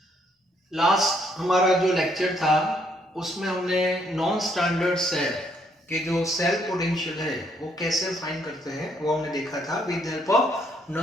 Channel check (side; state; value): both; normal; correlation 0.70